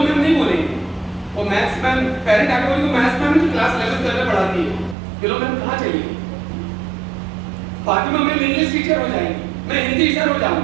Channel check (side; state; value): left; drops out; at 5.0 s